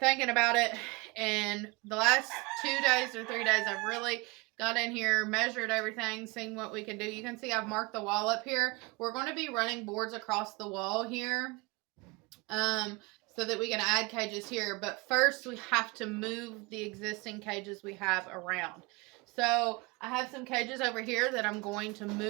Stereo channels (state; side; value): quieter; left; 25.6 dB